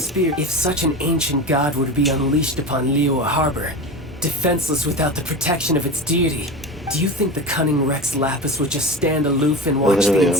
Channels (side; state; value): both; normal; correlation 0.27